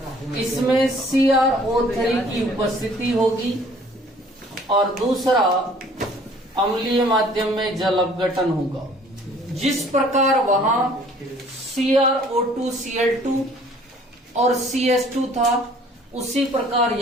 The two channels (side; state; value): both; normal; correlation 0.55